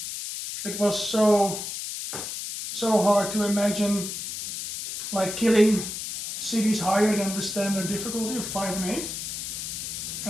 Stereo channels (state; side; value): noise; left; hiss, 6 dB below the sound